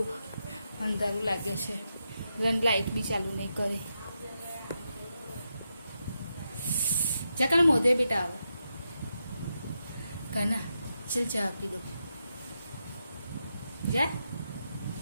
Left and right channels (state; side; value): inverted; both; correlation -0.85